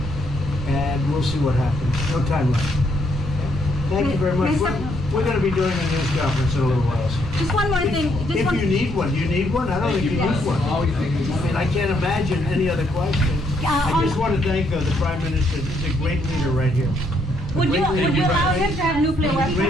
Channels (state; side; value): normal; both; correlation 0.72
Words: And we'll see what happens. No timeline. Thank you very much. We're going to be doing a news conference in a little while. Just one more thing. If you need one, do you need one? I don't think you need one. I mean, I can't imagine any other question. I just want to thank the Prime Minister. He's a great leader right here. Would you allow him to have nuclear Great